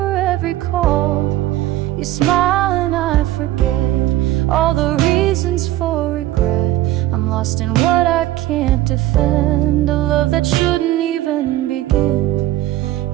every call. You smile and I forget all the reasons for regret. I'm lost in what I can't defend, a love that shouldn't even begin.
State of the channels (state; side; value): quieter; left; 15.1 dB